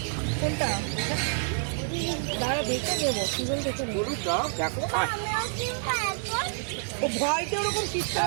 কোনটা? দাঁড়া দেখে দেবো, সিজন দেখে নেবো। গরুর দাও দেখো। ও ভয়তে ওরকম চিৎকার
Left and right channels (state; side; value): silent; left; 59 dB below the other